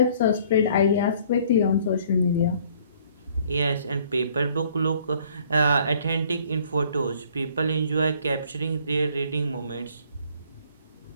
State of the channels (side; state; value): both; inverted; correlation -0.59